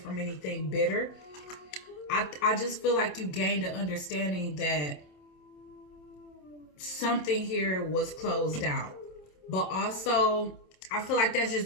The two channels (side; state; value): right; late; 27 ms